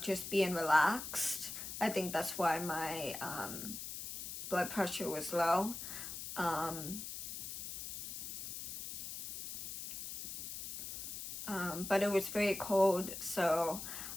just being relaxed. I think that's why my blood pressure was low. But it was very cold, so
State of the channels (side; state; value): left; noise; hiss, 7 dB below the sound